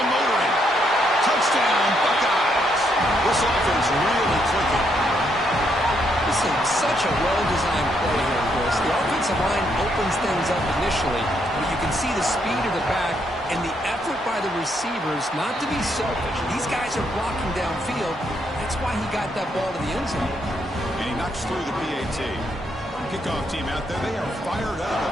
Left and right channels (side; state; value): both; normal; correlation 0.75